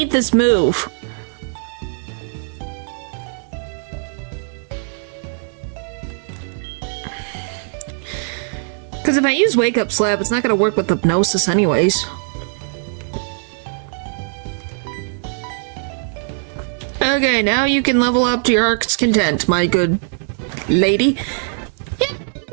this move. Because if I use Wake Up Slap, it's not going to work with Hypnosis anyways. Okay, now you can level up to your heart's content, my good lady.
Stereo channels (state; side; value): silent; left; digital silence